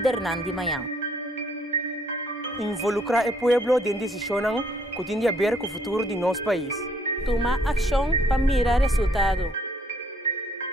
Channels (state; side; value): normal; both; correlation 0.66